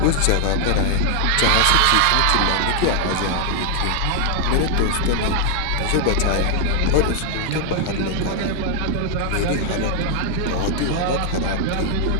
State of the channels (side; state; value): both; different; correlation 0.00